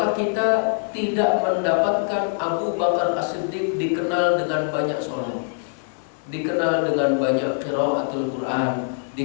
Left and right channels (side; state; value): right; silent; 60 dB below the other